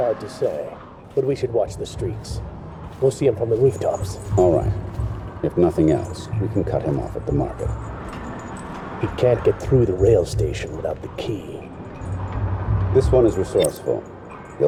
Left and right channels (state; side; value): identical; both; correlation 1.00